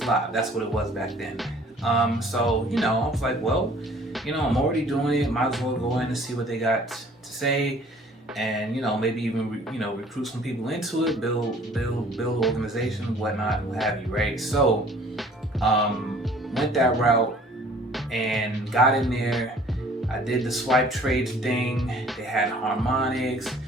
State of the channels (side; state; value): both; normal; correlation 0.54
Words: Live. That's what it was back then. So I was like, well, I'm already doing it. Might as well go in and see what they got to say, and maybe even recruit some people into it, build organization, whatnot, what have you, right? So went that route and got in there. I did the swipe trades thing. They had harmonics.